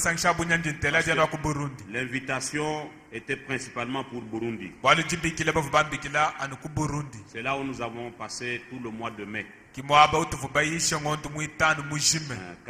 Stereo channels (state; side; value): identical; both; correlation 1.00